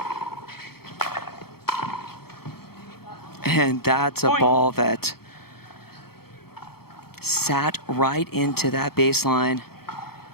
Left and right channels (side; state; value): right; late; 0.95 ms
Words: And that's a ball that sat right into that baseline.